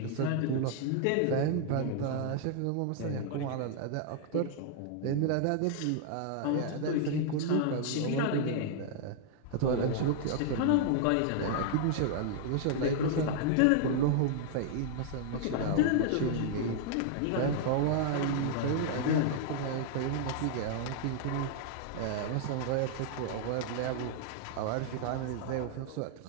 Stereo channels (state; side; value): different; both; correlation -0.01